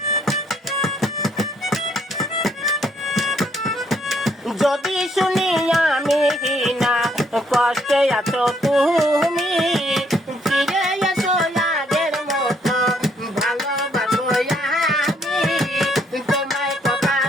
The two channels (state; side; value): normal; both; correlation 0.69